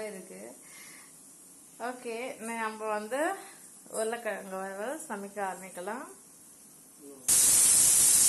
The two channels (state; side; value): identical; both; correlation 1.00